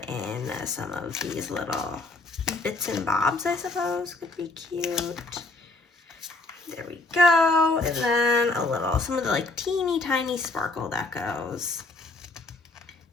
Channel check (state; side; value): quieter; right; 3.2 dB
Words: in some of these little bits and bobs, I suppose, could be cute. There we go. And then some of the like teeny tiny sparkle decos.